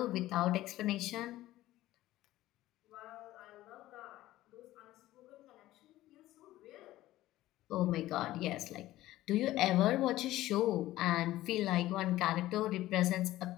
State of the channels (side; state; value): right; quieter; 15.7 dB